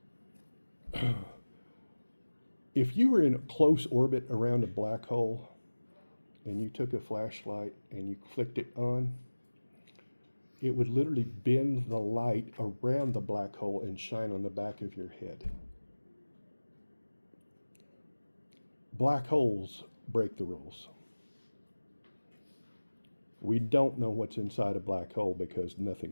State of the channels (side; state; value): both; inverted; correlation -1.00